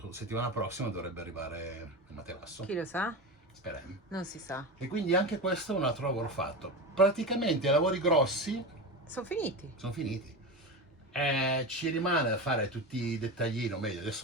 settimana prossima dovrebbe arrivare il materasso. Chi lo sa? Speriamo. Non si sa. E quindi anche questo è un altro lavoro fatto. Praticamente i lavori grossi Sono finiti. sono finiti. Ci rimane da fare tutti i dettaglini, o meglio,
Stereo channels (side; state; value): both; normal; correlation 0.23